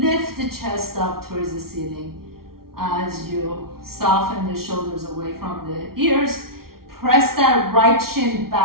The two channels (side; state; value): left; late; 0.94 ms